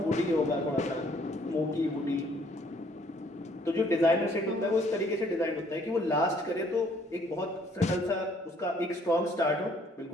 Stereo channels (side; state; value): both; normal; correlation 0.63